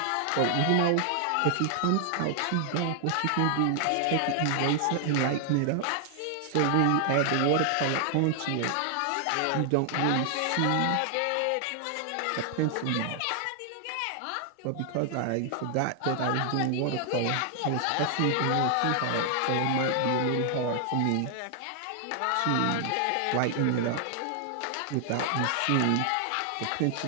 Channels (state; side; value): different; both; correlation 0.00